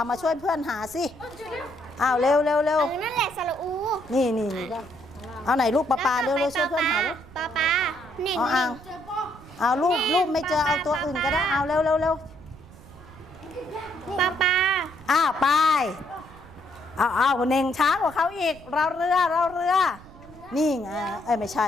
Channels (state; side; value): noise; right; rumble, 20 dB below the sound